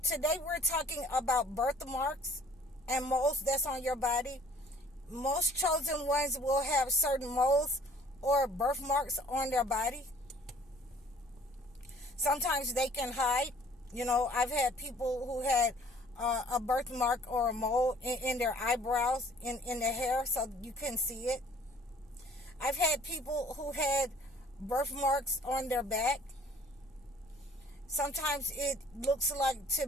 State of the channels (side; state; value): both; normal; correlation 0.54